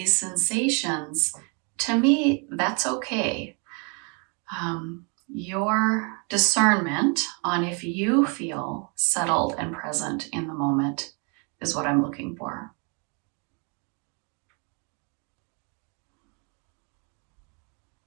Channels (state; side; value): quieter; left; 35.3 dB